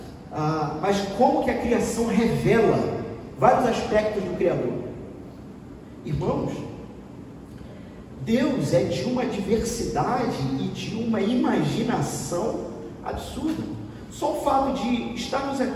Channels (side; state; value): both; identical; correlation 1.00